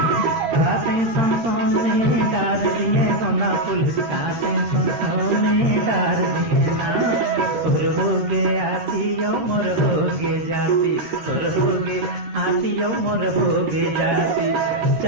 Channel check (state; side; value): late; left; 13 ms